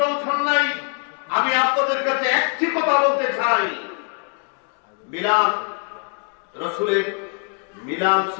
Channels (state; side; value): quieter; right; 39.2 dB